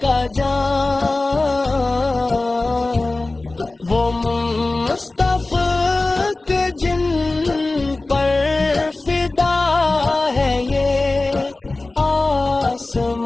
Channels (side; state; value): right; quieter; 3.1 dB